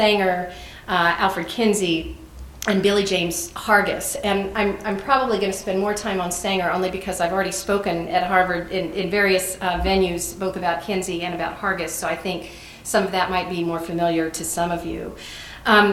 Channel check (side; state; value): both; identical; correlation 1.00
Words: Alfred Kinsey, and Billy James Hargus. And I'm probably going to spend more time on Sanger only because I've already spoken at Harvard in various venues, both about Kinsey and about Hargus, so I think some of that might be more familiar to some of you.